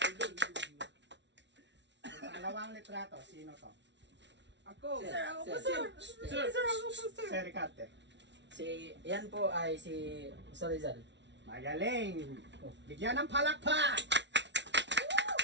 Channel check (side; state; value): left; late; 0.51 ms